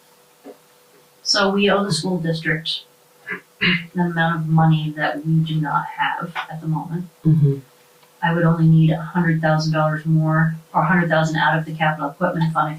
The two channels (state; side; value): identical; both; correlation 1.00